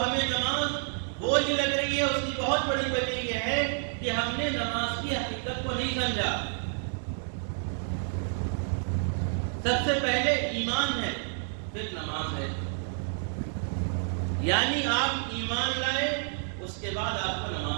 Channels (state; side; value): silent; left; 58 dB below the other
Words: نماز بوجھ لگ رہی ہے اس کی بہت بڑی وجہ یہ ہے کہ ہم نے نماز کی حقیقت کو نہیں سمجھا۔ سب سے پہلے ایمان ہے، پھر نماز ہے، یعنی آپ ایمان لائے اس کے بعد آپ کو